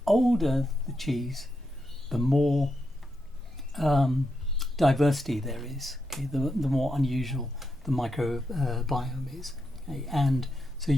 older the cheese, the more diversity there is. Okay, the more unusual the microbiome is. Okay, and so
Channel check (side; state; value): both; normal; correlation 0.84